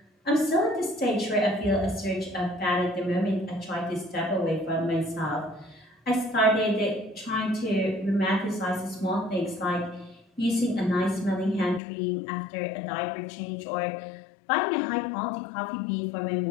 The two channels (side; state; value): right; drops out; at 11.8 s